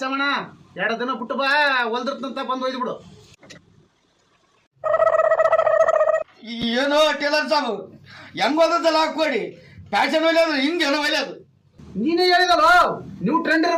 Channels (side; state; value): both; identical; correlation 1.00